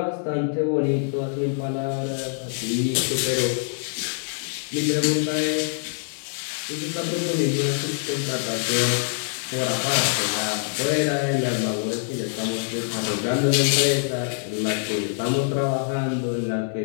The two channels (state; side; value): silent; right; digital silence